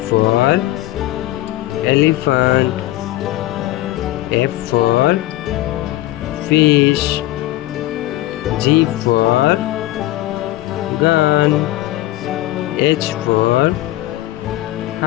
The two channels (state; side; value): quieter; right; 16.0 dB